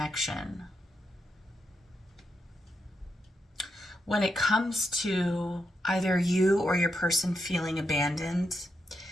When it comes to either you or your person feeling abandoned,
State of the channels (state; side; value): normal; both; correlation 0.83